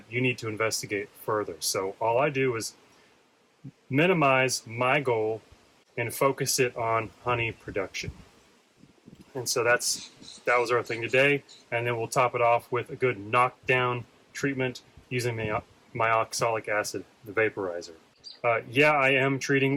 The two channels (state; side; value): identical; both; correlation 1.00